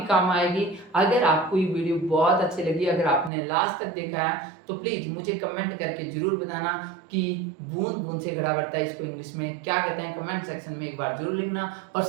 काम आएगी। अगर आपको ये वीडियो बहुत अच्छी लगी, अगर आपने लास्ट तक देखा है, तो प्लीज मुझे कमेंट करके जरूर बताना कि बूंद बूंद से घड़ा भरता है इसको इंग्लिश में क्या कहते हैं। कमेंट सेक्शन में एक बार जरूर लिखना और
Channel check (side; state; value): left; drops out; at 3.3 s